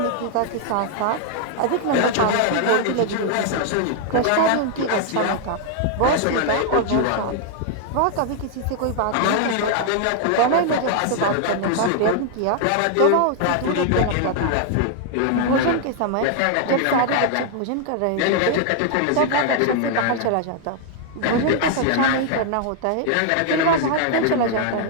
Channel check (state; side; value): different; both; correlation 0.00